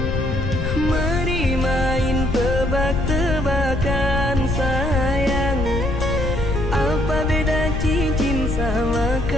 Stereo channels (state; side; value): noise; left; rumble, 3 dB below the sound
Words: Mari main tebak-tebakan sayang, apa beda cincin sama